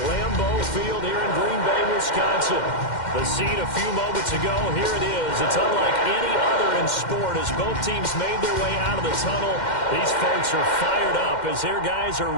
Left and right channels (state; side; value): late; right; 2.1 ms